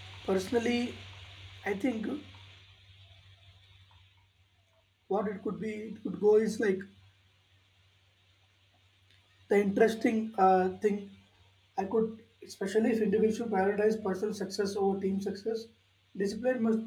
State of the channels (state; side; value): identical; both; correlation 1.00